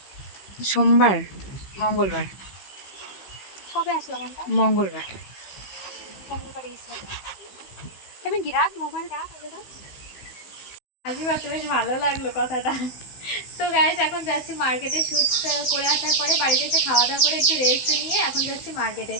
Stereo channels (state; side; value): late; right; 15 ms